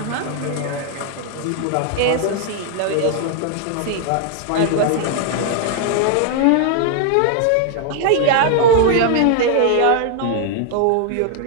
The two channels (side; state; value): both; different; correlation 0.00